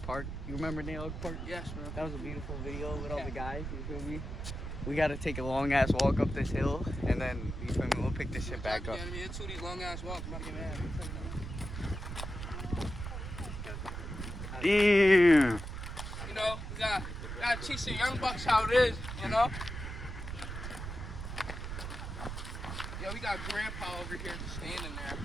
Park. You remember Noah Park? Yes, bro. That was a beautiful video with all the guys. You feel me? We gotta take a long ass walk up this hill, and then you feel me? We'll pick this shit back up. Yeah, I mean, it's 2 these long ass walks. I'm about to get mad. Damn. You know, we gotta teach the young bucks how it is, you know? Yo, we got Grandpa over here just standing there.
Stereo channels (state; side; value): noise; right; rumble, 6 dB below the sound